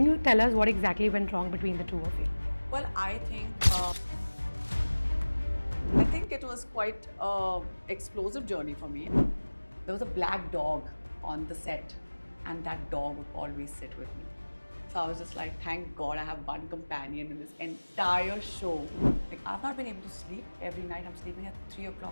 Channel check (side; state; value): both; inverted; correlation -1.00